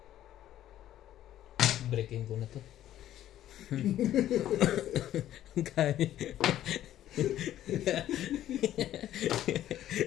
Breaking ko na to. Kaya.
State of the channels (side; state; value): right; quieter; 12.4 dB